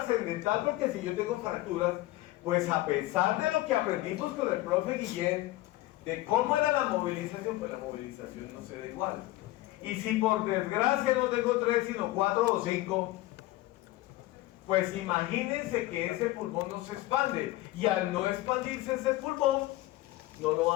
porque si yo tengo fracturas, pues a pesar de lo que aprendimos con el profe Guillén, de cómo era la movilización, pues la movilización no se da igual. Y si por desgracia no tengo 3, sino 4 o 5, pues imagínense que ese pulmón no se expande. Y al no expandirse ese pulmón, no lo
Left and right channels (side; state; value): right; quieter; 17.5 dB